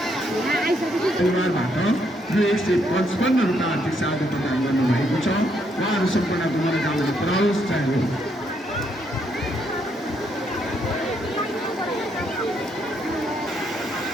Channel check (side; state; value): both; normal; correlation 0.74